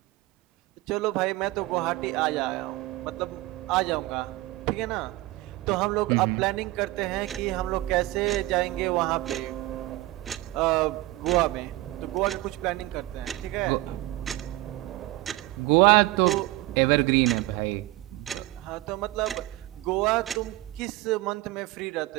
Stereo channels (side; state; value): left; quieter; 18.7 dB